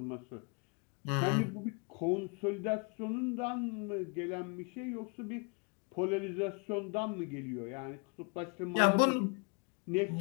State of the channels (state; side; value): quieter; right; 33.3 dB